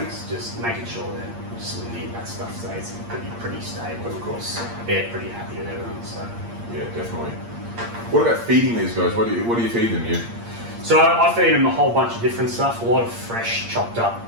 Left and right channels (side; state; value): left; late; 8.6 ms